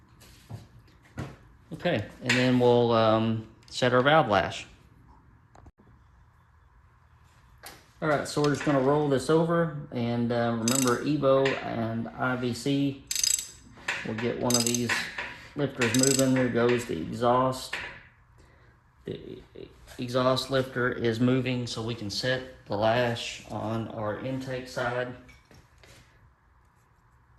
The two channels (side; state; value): both; identical; correlation 1.00